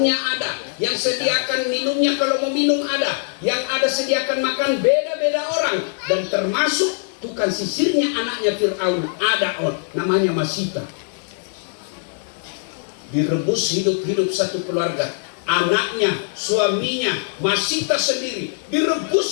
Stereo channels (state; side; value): silent; right; 65 dB below the other